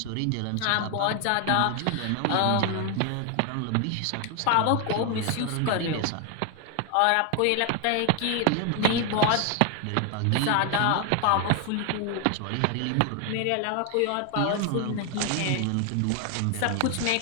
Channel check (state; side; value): different; both; correlation 0.01